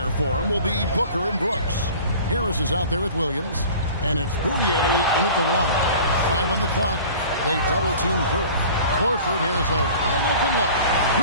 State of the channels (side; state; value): both; inverted; correlation -0.43